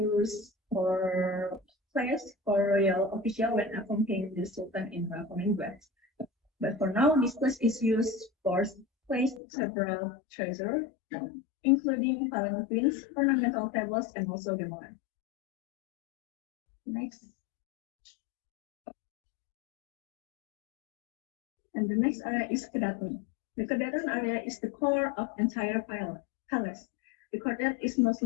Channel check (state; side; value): drops out; right; at 9.4 s